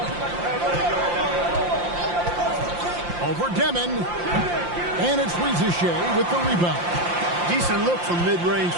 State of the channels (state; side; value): late; left; 5.7 ms